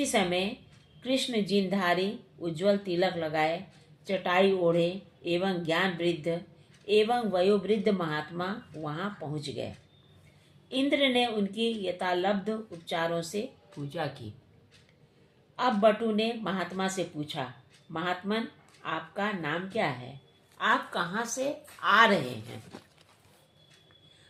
समय कृष्ण जिनधारी, उज्ज्वल तिलक लगाए, चटाई ओढ़े एवं ज्ञान वृद्ध एवं वयोवृद्ध महात्मा वहां पहुंच गए। इंद्र ने उनकी यथालब्ध उपचारों से पूजा की। अब बटु ने महात्मा से पूछा, महात्मन, आपका नाम क्या है? आप कहाँ से आ रहे हैं?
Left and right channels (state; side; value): identical; both; correlation 1.00